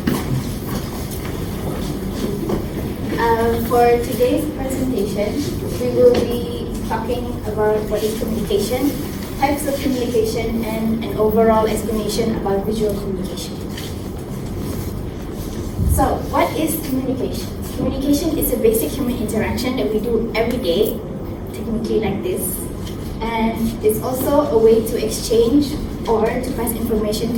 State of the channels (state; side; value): identical; both; correlation 1.00